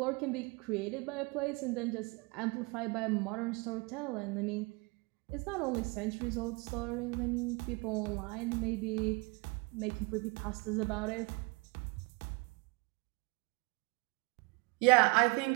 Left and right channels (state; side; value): quieter; left; 28.7 dB